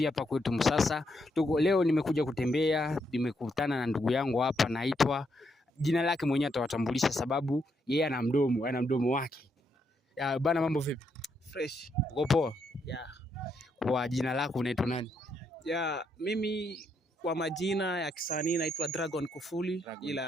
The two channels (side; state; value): both; normal; correlation 0.78